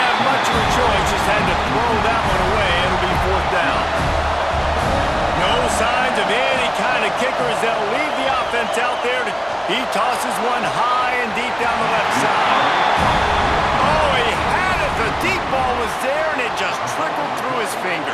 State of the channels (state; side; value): identical; both; correlation 1.00